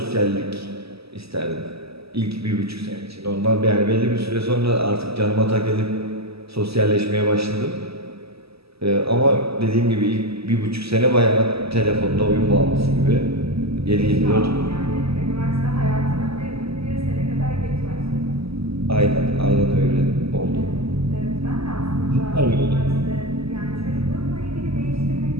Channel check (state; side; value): late; left; 0.77 ms